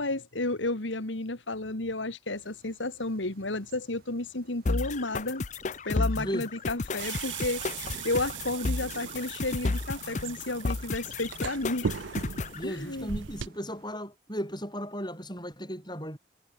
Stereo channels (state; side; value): normal; both; correlation 0.25